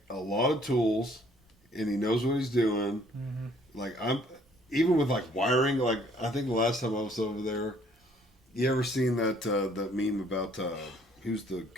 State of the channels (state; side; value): normal; both; correlation 0.61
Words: a lot of tools, and he knows what he's doing. Mhm. Like I'm, even with like wiring. Like I think the last time I was over there, you ever seen that meme about who's the